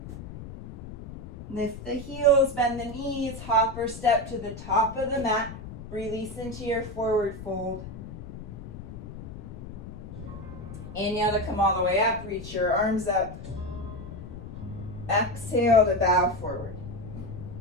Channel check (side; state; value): left; noise; rumble, 12 dB below the sound